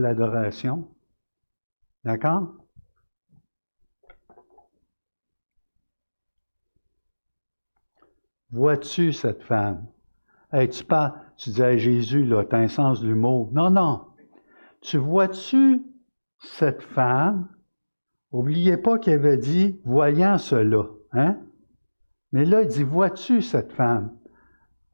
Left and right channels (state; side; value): inverted; both; correlation -1.00